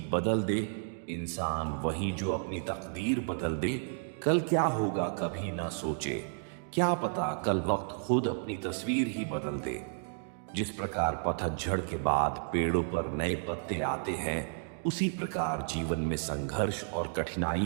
बदल दे इंसान, वही जो अपनी तकदीर बदल दे। कल क्या होगा कभी ना सोचे, क्या पता कल वक्त खुद अपनी तस्वीर ही बदल दे। जिस प्रकार पतझड़ के बाद पेड़ों पर नए पत्ते आते हैं, उसी प्रकार जीवन में संघर्ष और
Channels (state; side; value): silent; left; digital silence